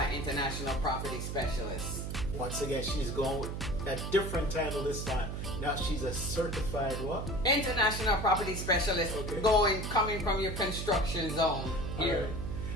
international property specialist. Once again, she's going with a different title this time. Now she's a certified what? International property specialist, Okay. coming from your construction zone here. Right.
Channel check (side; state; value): right; noise; hum, 4 dB below the sound